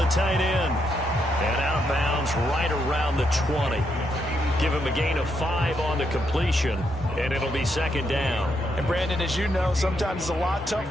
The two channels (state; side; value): normal; both; correlation 0.79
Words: tight end. And out of bounds right around the 20. Give him a gain of 5 on the completion, and it'll be 2nd down. And, Brandon, as you know, sometimes it's a lot